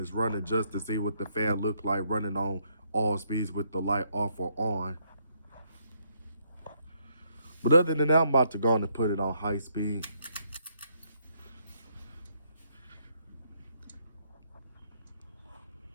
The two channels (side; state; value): both; inverted; correlation -0.72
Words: running just to see what the fan look like running on all speeds with the light off or on. But other than that, I'm about to go on and put it on high speed.